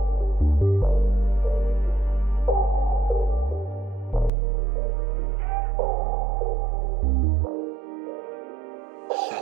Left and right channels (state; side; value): drops out; left; at 4.3 s